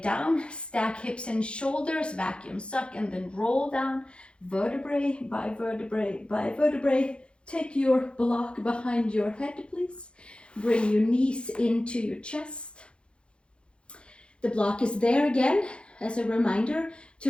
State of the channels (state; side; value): late; right; 0.056 ms